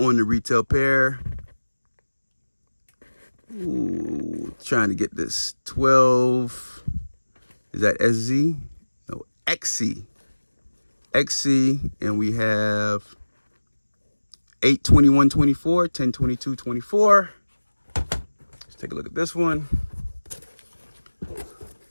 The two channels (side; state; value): both; inverted; correlation -1.00